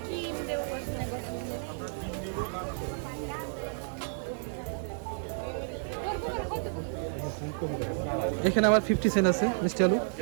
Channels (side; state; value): left; silent; digital silence